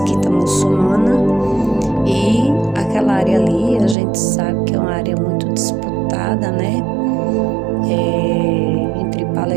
muçulmana. E aquela área ali, a gente sabe que é uma área muito disputada, né? Entre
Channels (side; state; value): left; drops out; at 4.0 s